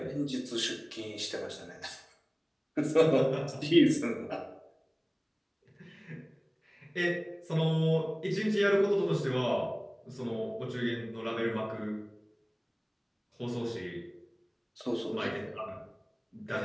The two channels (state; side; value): identical; both; correlation 1.00